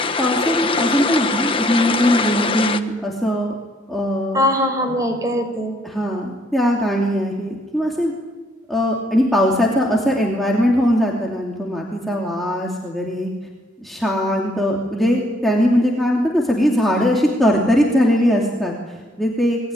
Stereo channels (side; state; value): both; normal; correlation 0.68